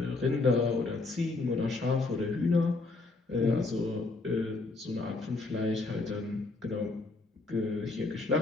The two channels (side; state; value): right; quieter; 3.4 dB